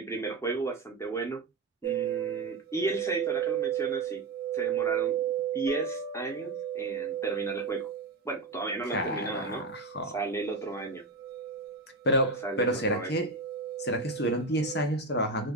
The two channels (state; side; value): quieter; left; 3.4 dB